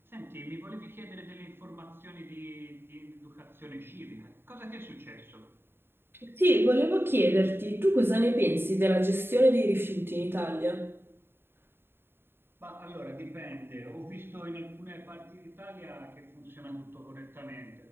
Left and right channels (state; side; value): late; left; 0.11 ms